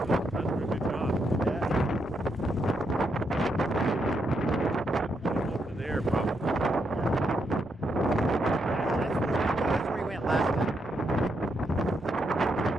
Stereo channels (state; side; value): normal; both; correlation 0.80